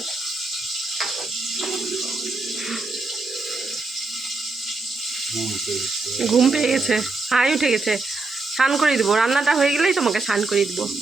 ঘুম পেয়ে গেছে, হাই উঠে গেছে। স্নান করে দিব, রান্নাটা হয়ে গেলেই তোমাকে স্নান করে দিব।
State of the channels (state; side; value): quieter; left; 3.5 dB